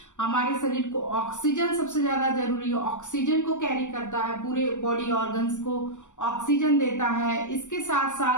हमारे शरीर को ऑक्सीजन सबसे ज्यादा जरूरी है, ऑक्सीजन को कैरी करता है, पूरे बॉडी ऑर्गन्स को ऑक्सीजन देता है। इसके साथ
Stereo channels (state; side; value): late; right; 0.85 ms